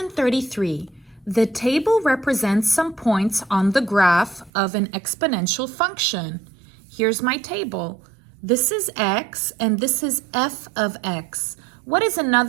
33. The table represents some points on the graph of an exponential function. Here's my table. This is x and this is f of x. What is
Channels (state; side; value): drops out; left; at 4.5 s